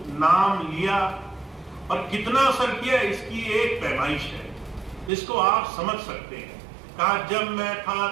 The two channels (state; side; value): drops out; left; at 5.1 s